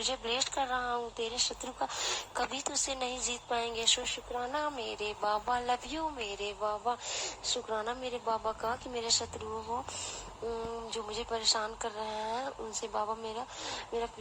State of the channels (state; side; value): identical; both; correlation 1.00